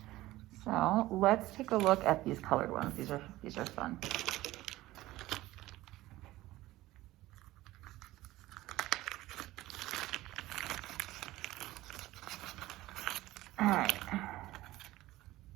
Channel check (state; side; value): quieter; left; 17.0 dB